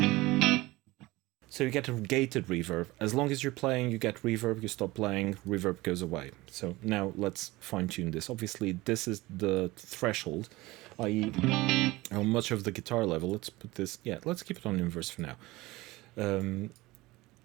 So you get a gated reverb. As long as you're playing, you get reverb. You stop playing, reverb goes away. So now let's fine-tune this. Obviously, this is the threshold, i.e. how much of the guitar level. Let's put this, yeah, let's keep it on inverse for now.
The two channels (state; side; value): quieter; left; 20.2 dB